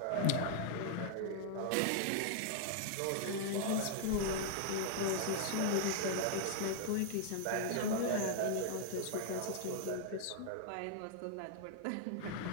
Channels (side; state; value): both; different; correlation -0.01